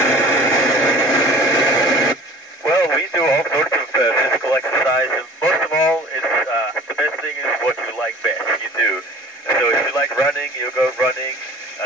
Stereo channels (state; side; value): normal; both; correlation 0.45